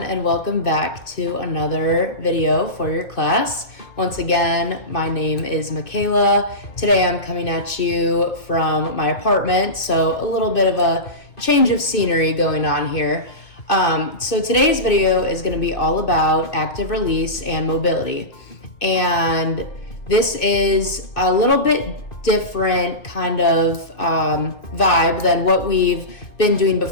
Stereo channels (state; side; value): late; right; 2.3 ms